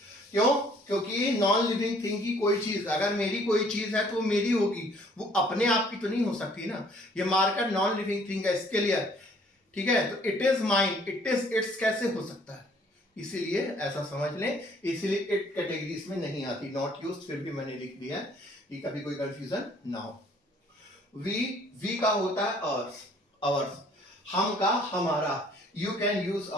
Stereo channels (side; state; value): both; normal; correlation 0.59